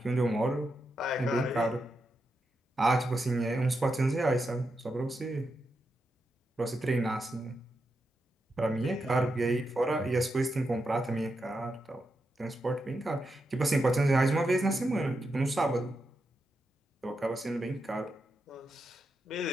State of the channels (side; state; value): both; normal; correlation 0.86